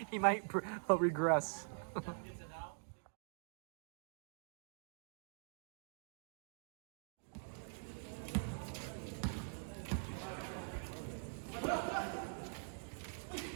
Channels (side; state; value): left; silent; digital silence